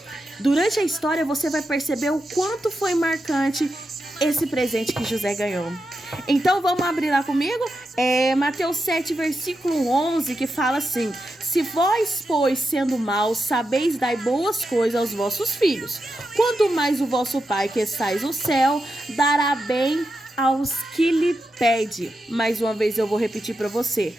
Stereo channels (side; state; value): both; normal; correlation 0.87